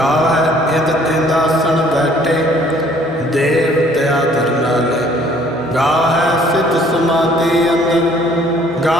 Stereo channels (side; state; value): both; normal; correlation 0.58